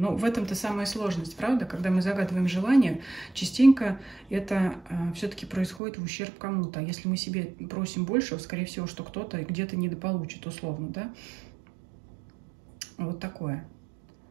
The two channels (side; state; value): left; drops out; at 5.8 s